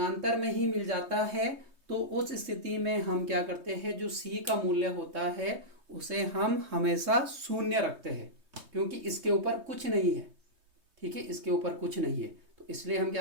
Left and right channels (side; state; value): left; late; 3.2 ms